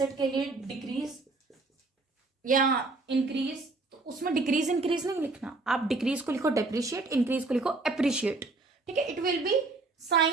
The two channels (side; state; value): left; quieter; 3.5 dB